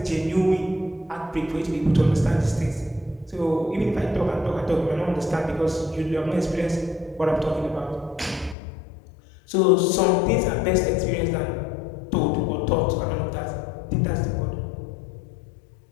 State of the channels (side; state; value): right; drops out; at 8.6 s